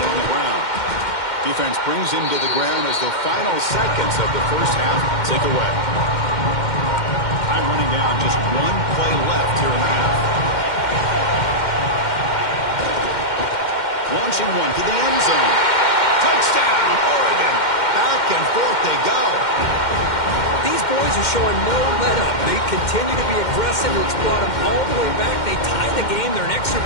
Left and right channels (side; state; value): right; late; 2.1 ms